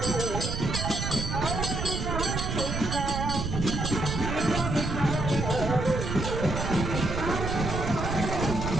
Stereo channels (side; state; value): right; noise; rumble, 3 dB below the sound